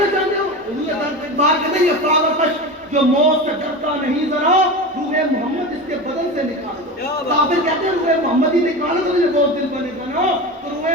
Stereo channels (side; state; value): both; normal; correlation 0.26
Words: چاہتے ہو؟ بات کہتے ہیں یہ فاغتش جو موت سے ڈرتا نہیں ذرا روح محمد اس کے بدن سے نکال دو. کافر کہتے ہیں روح محمد ہی نکالو تو مجھے بہت دل پر نکالو. تو روح